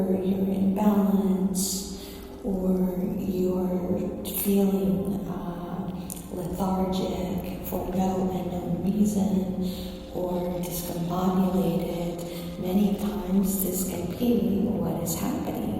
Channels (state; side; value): identical; both; correlation 1.00